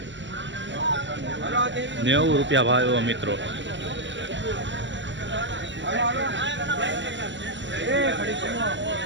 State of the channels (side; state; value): left; late; 0.54 ms